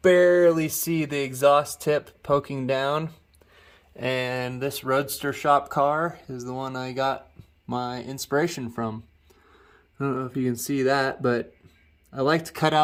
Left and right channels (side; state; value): both; identical; correlation 1.00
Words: barely see the exhaust tip poking down. And this Roadster shop car is the one I got my inspiration from. I don't know if you can see that, but I like to cut